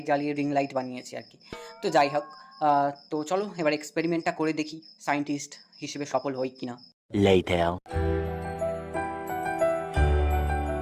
জ্বালিয়ে রিং লাইট বানিয়েছি আর কি। তো যাই হোক, তো চলো এবার এক্সপেরিমেন্টটা করে দেখি সায়েন্টিস্ট হিসেবে সফল হই কিনা। Later.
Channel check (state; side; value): identical; both; correlation 1.00